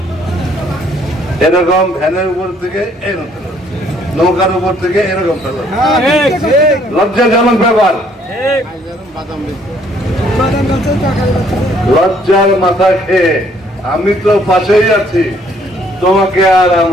এরকম ভ্যানের উপর থেকে এরকম, নৌকার উপর থেকে এরকম ফেলা, লজ্জাজনক ব্যাপার। লজ্জার মাথা খেয়ে আমি তো পাশেই আছি, তোমাকে আর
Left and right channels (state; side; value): normal; both; correlation 0.64